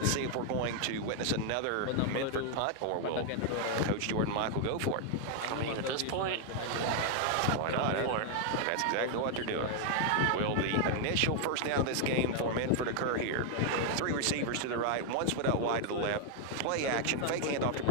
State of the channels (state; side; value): different; both; correlation 0.00